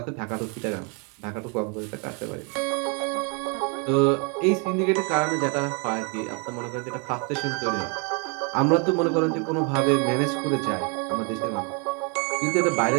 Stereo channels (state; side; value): quieter; left; 35.1 dB